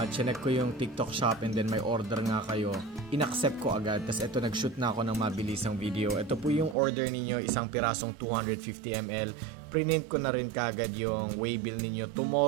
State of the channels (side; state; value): left; drops out; at 6.8 s